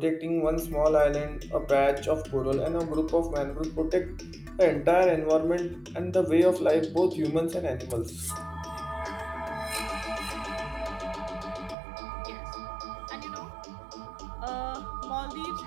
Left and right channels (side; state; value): left; drops out; at 11.8 s